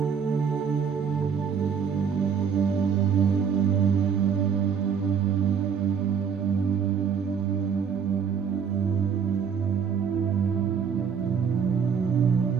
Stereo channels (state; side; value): quieter; left; 6.9 dB